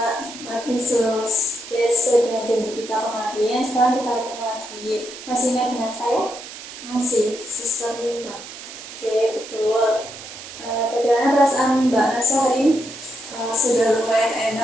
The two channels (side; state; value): right; noise; hiss, 13 dB below the sound